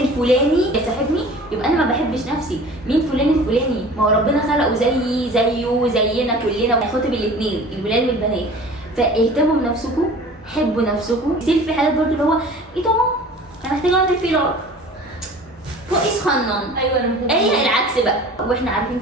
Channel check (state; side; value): normal; both; correlation 0.43